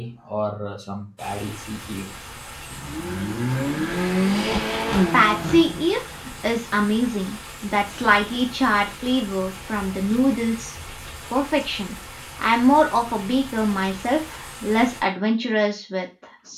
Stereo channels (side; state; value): both; identical; correlation 1.00